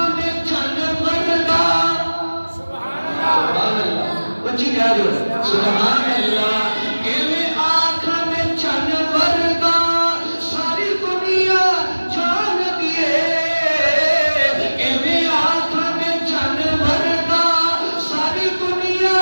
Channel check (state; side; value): inverted; both; correlation -1.00